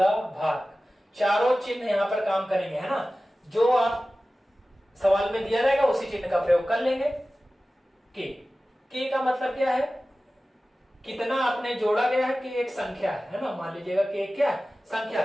भाग। चारों चिन्ह यहां पर काम करेंगे, है ना। जो आप सवाल में दिया रहेगा उसी चिन्ह का प्रयोग कर लेंगे। के का मतलब क्या है, कितना आपने जोड़ा गया है, कि एक संख्या है ना। मान लीजिएगा कि क्या संख्या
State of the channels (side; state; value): both; normal; correlation 0.96